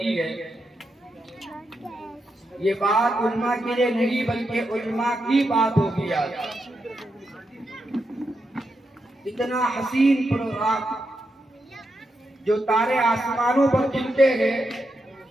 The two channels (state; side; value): normal; both; correlation 0.85